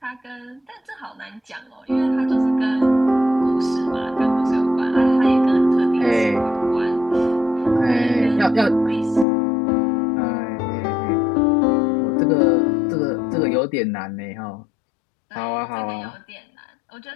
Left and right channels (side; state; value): right; drops out; at 9.2 s